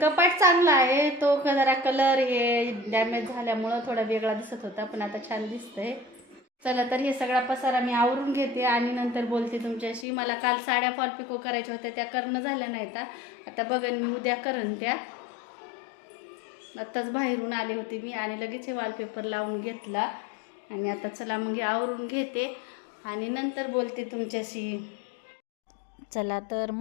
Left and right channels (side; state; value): right; drops out; at 10.1 s